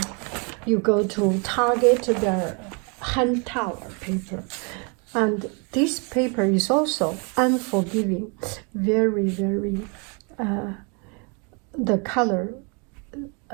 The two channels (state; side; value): quieter; left; 34.7 dB